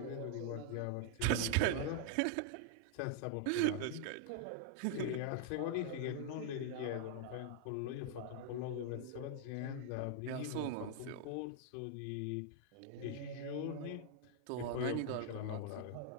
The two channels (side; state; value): both; different; correlation -0.01